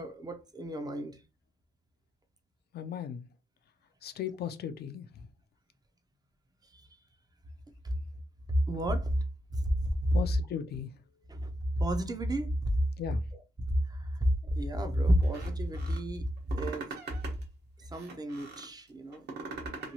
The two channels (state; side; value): normal; both; correlation 0.85